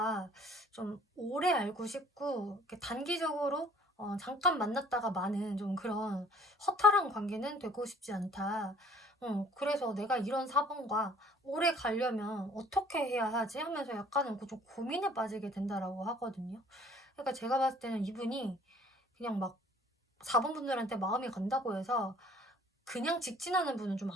좀 오래 알고 싶고, 이렇게 단기적으로 잠깐 만났다가 마는 좀 그런 허탈한 관계는 되고 싶지 않다. 그래서 내가 이런 4번과 오래 가려면 어떻게 해야 하지? 하면서 약간은 좀 고민에 빠지게 된다라고 하거든요. 그러니까 제가 봤을 때는 이분이 그냥 막 4번 분들한테 마음이 간다고 해서 그냥 직진하는 분은 좀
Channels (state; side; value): normal; both; correlation 0.55